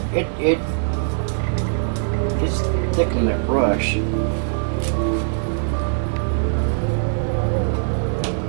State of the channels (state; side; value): silent; left; 65 dB below the other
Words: it's thickening that brush.